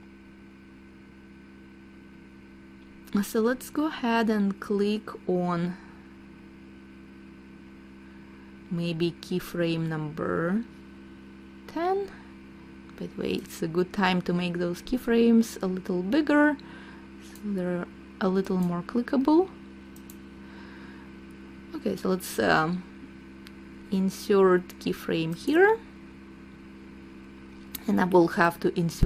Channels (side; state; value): both; identical; correlation 1.00